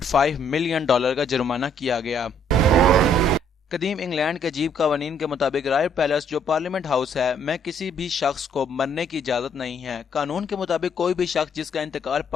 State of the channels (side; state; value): both; normal; correlation 0.65